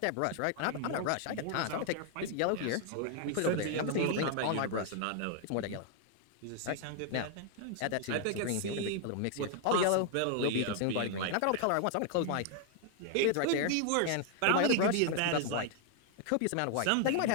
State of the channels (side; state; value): both; different; correlation 0.00